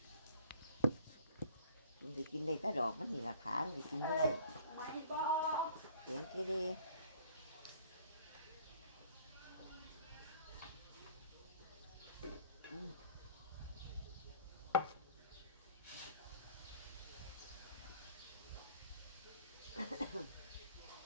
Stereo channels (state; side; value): inverted; both; correlation -0.53